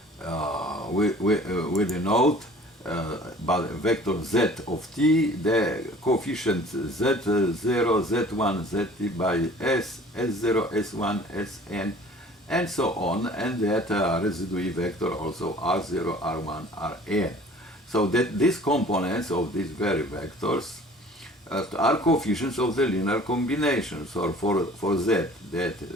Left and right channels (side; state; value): both; normal; correlation 0.49